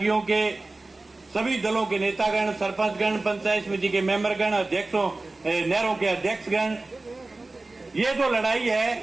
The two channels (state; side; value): quieter; left; 3.2 dB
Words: के सभी दलों के नेतागण, सरपंचगण, पंचायत समिति के मेंबरगण, अध्यक्षों, नहरों के अध्यक्षगण, ये जो लड़ाई